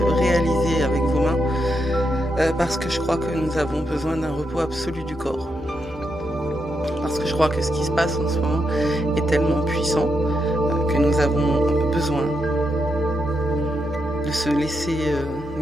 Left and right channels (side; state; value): both; normal; correlation 0.82